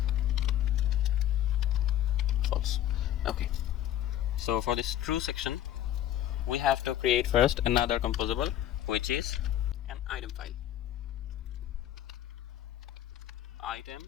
false. Okay, so for this true section, we have to create first another composable, which is an item file.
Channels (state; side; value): quieter; right; 12.0 dB